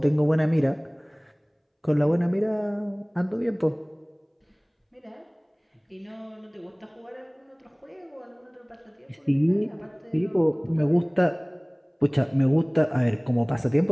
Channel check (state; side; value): identical; both; correlation 1.00